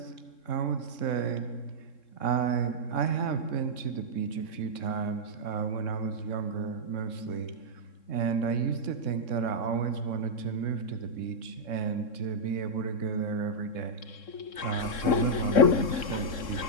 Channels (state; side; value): late; right; 3.7 ms